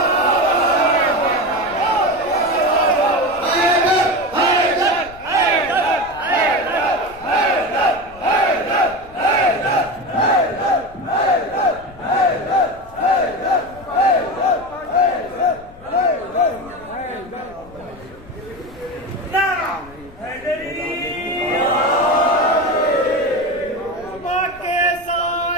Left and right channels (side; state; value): left; noise; rumble, 22 dB below the sound